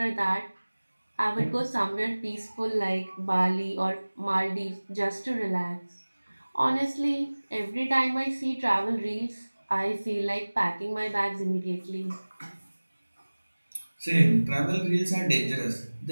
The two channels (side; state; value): both; inverted; correlation -1.00